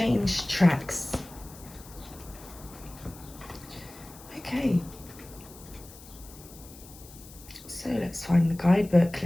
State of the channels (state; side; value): noise; left; hiss, 19 dB below the sound